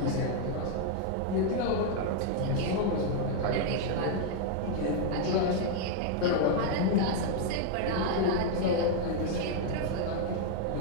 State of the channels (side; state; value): both; different; correlation 0.00